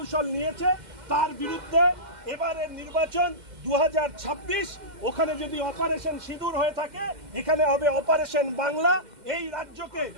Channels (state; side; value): late; left; 2.1 ms